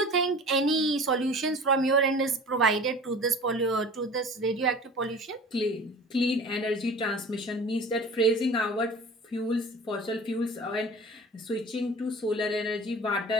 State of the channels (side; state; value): both; normal; correlation 0.41